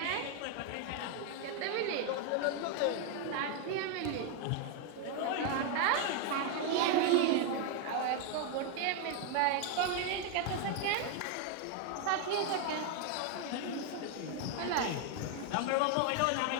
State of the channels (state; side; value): different; both; correlation 0.01